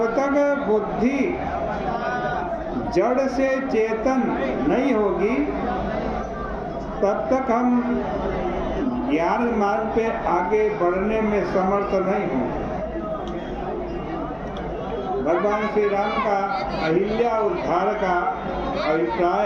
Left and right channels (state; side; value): identical; both; correlation 1.00